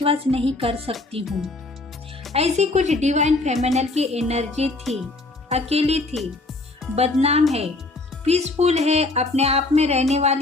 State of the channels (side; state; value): right; quieter; 3.1 dB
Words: नहीं कर सकती हूँ। ऐसी कुछ डिवाइन फेमिनल की एनर्जी थी, अकेली थी, बदनाम है, पीसफुल है, अपने आप में रहने